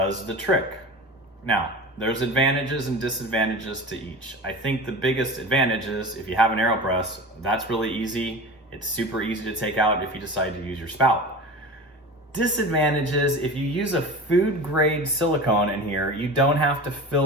the trick. Now, there's advantages and disadvantages to each. I think the biggest advantage is if you have an AeroPress, that's really easy. It's super easy to take out if you decide to use your spout. Disadvantages, if you use a food grade silicone in here, you don't have to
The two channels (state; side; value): normal; both; correlation 0.33